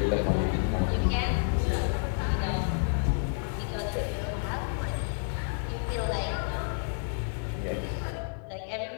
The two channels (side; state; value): right; silent; 56 dB below the other